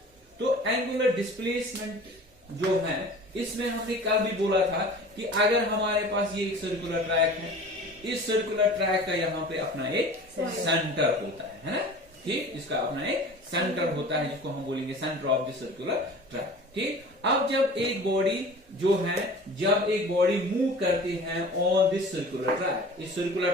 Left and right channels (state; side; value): normal; both; correlation 0.41